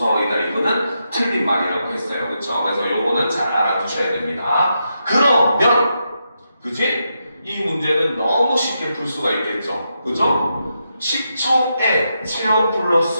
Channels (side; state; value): both; inverted; correlation -0.84